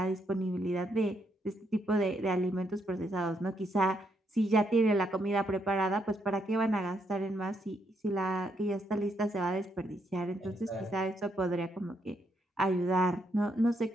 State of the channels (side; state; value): both; normal; correlation 0.76